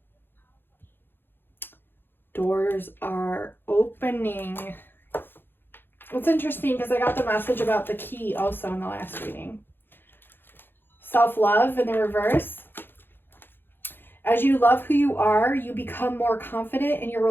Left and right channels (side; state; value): right; late; 0.10 ms